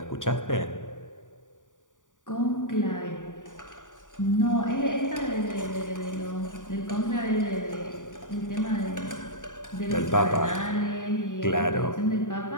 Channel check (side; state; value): right; late; 0.87 ms